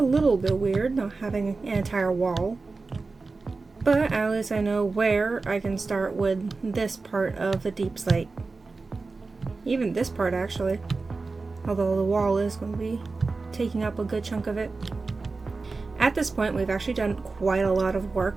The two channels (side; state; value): left; quieter; 3.9 dB